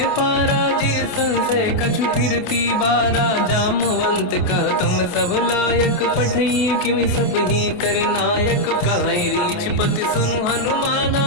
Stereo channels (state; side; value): late; right; 28 ms